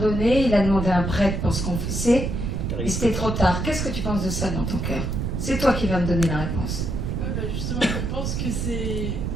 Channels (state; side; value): noise; right; rumble, 2 dB below the sound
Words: il a demandé un prêtre pour se confesser, et c'était trop tard. Qu'est-ce que tu penses de ça dans ton cœur? C'est toi qui vas me donner la réponse. Bah justement, je pense que c'est...